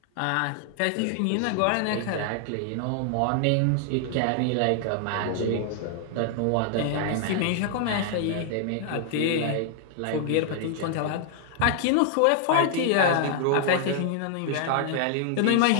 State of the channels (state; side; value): different; both; correlation 0.00